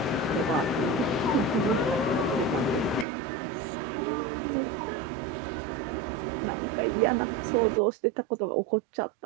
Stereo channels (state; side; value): drops out; left; at 3.1 s